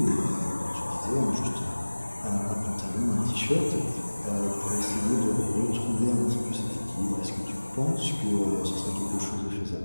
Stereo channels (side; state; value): both; inverted; correlation -1.00